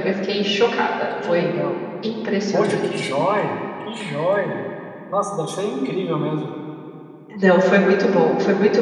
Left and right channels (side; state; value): both; identical; correlation 1.00